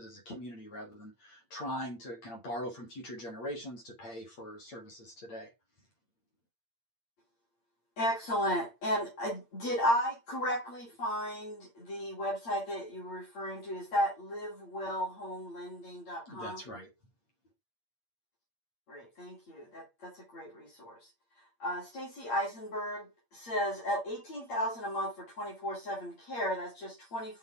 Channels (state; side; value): late; right; 8.6 ms